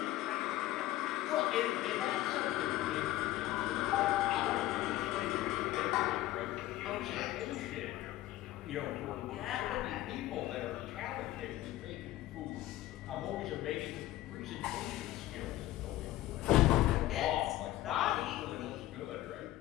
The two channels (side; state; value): right; quieter; 15.5 dB